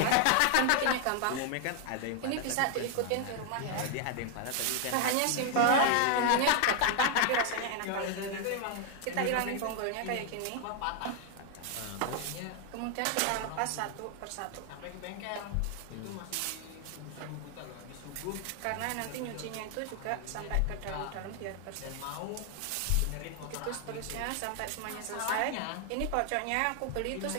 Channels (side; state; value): both; different; correlation 0.00